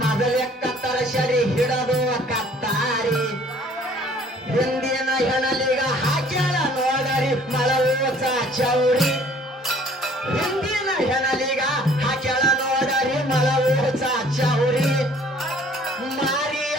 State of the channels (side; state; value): both; normal; correlation 0.56